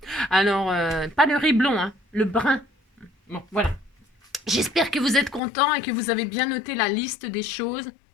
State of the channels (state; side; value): drops out; right; at 5.4 s